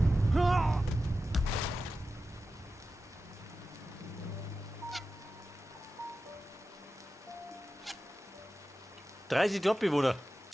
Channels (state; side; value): normal; both; correlation 0.93